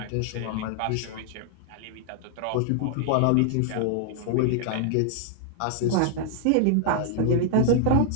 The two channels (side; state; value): both; different; correlation -0.01